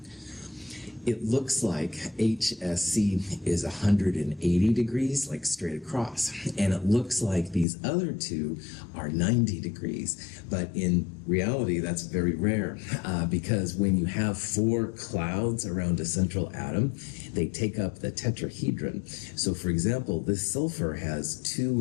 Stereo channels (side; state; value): right; drops out; at 7.7 s